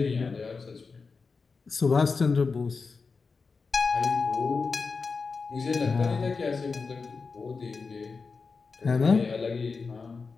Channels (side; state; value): right; quieter; 4.6 dB